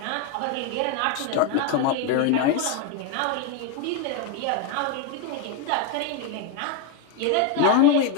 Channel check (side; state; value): both; different; correlation 0.02